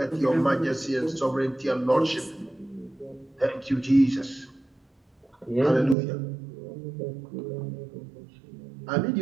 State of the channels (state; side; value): drops out; left; at 6.0 s